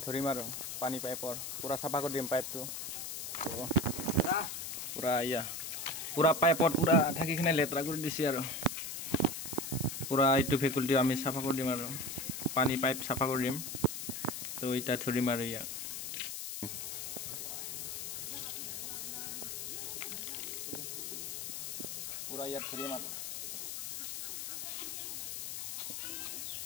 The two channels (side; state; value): left; noise; hiss, 5 dB below the sound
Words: ধৰিম আৰু পানী পাইপৰ পূৰা চাফা কৰি দিম পাইপটো। পূৰা পূৰা পাইপত পূৰা থাকি কিনে লেতেৰা কৰি দিছে আৰু পূৰা এইটো ভেকুলীটো আমি চাফা কৰি দিম আৰু পানী পাইপ চাফা কৰি দিম। তো এতিয়া ধৰিম আৰু ইয়াক পূৰা ইয়াত ধৰিম আৰু